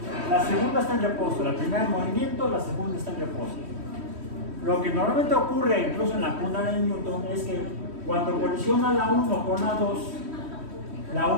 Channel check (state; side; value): late; left; 3.1 ms